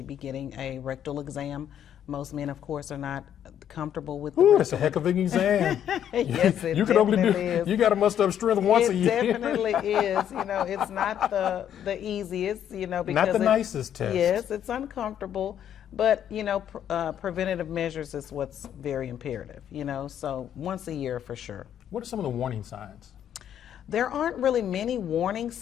be getting a rectal exam. Most men, of course, are not comfortable with the Ooh, that's a heck of an exam. Yes, it you can only do. is. You got to muster up strength once a year. It definitely is. It's not the easiest. Because not the nicest test. Yes, it's uncomfortable. But preventative measures is what's very imperative. So once a year for sure. What are some of the warning signs? There aren't really many warning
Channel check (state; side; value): quieter; right; 9.8 dB